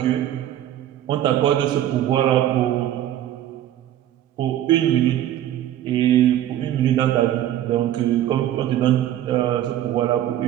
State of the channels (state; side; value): quieter; left; 12.1 dB